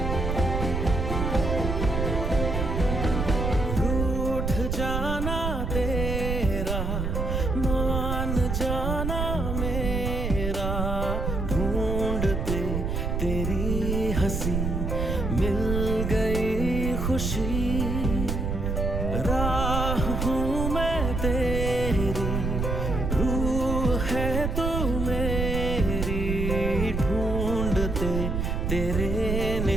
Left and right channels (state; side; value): noise; right; rumble, 1 dB below the sound